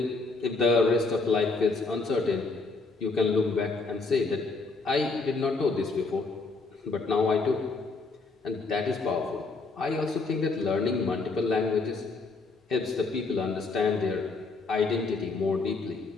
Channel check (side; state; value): right; quieter; 3.9 dB